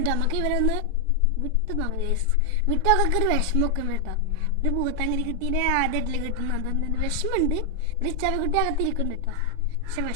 നമുക്ക് ഇവരൊന്ന് വിട്ട് വിട്ടൊക്കെ ഒരു വിഷമമൊക്കെ ഉണ്ട് കേട്ടോ. ഒരു പൂത്താങ്കരി കുട്ടീനെ ആദ്യമായിട്ടില്ല കിട്ടുന്നത്, അതൊന്നും വിഷമമുണ്ട്. ഒരു ചവക്കുട്ടി അകത്തിരിക്കുന്നുണ്ട് കേട്ടോ. പക്ഷെ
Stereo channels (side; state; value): both; normal; correlation -0.01